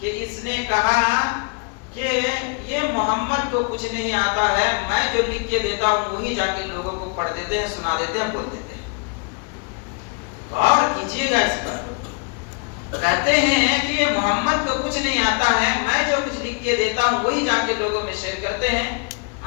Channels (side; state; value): right; quieter; 33.9 dB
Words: اس نے کہا کہ یہ محمد کو کچھ نہیں آتا ہے، میں جو لکھ کے دیتا ہوں وہی جا کے لوگوں کو پڑھ دیتے ہیں، سنا دیتے ہیں، بول دیتے ہیں۔ غور کیجئے گا اس پر، کہتے ہیں کہ یہ محمد کو کچھ نہیں آتا ہے، میں جو کچھ لکھ کے دیتا ہوں وہی جا کے لوگوں میں شیئر کرتے ہیں۔